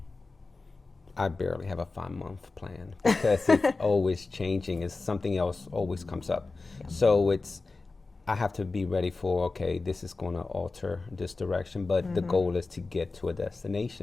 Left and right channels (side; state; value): right; quieter; 3.7 dB